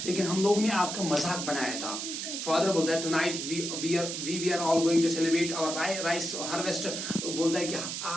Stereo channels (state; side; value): noise; right; hiss, 4 dB below the sound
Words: लेकिन हम लोग ने आपका मजाक बनाया था. फादर बोलता है, tonight we are all going to celebrate our rice harvest. बोलता है कि